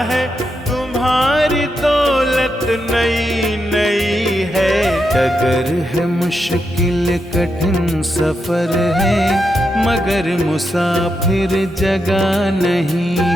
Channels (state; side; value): normal; both; correlation 0.84